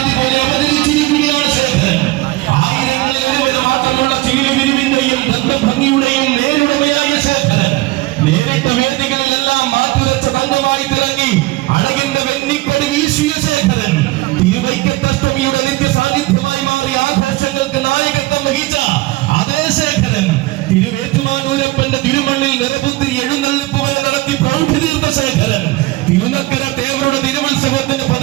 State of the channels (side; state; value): left; quieter; 19.5 dB